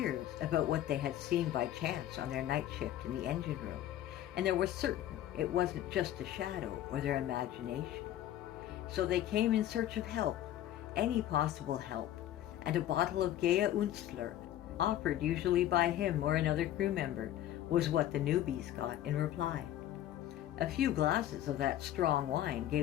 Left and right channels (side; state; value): right; quieter; 12.5 dB